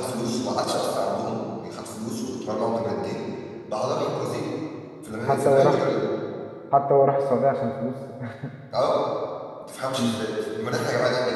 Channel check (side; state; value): both; identical; correlation 1.00